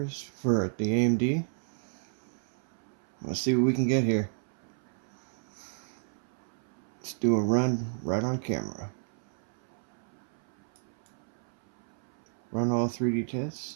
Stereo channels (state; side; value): silent; left; 56 dB below the other